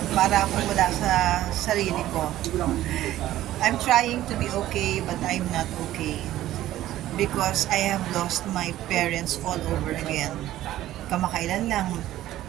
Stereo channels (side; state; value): left; quieter; 14.1 dB